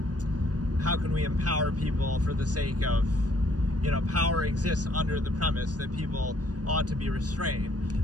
how can we empower people for the sake of, you know, power exists under the premise that people ought to be restrained,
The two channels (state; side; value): late; left; 0.68 ms